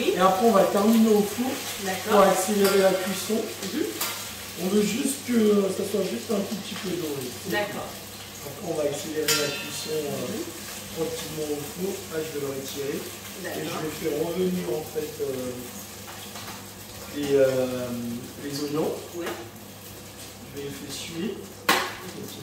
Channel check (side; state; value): both; identical; correlation 1.00